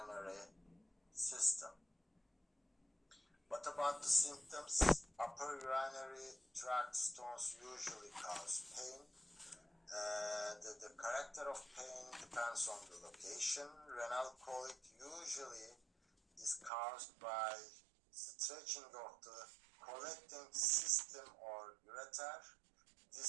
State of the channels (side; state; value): left; drops out; at 16.7 s